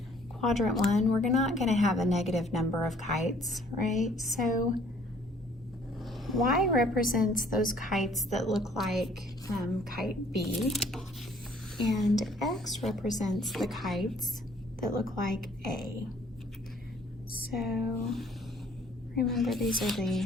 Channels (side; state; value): both; normal; correlation 0.59